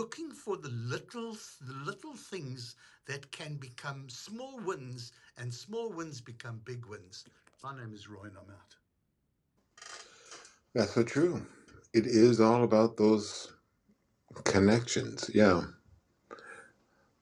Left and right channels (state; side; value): identical; both; correlation 1.00